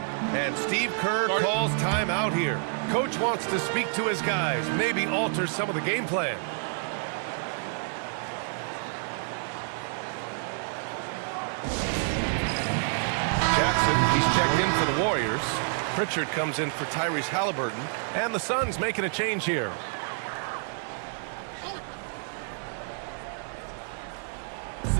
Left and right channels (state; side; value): silent; left; 59 dB below the other